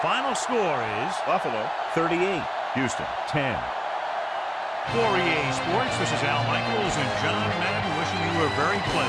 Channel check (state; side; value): identical; both; correlation 1.00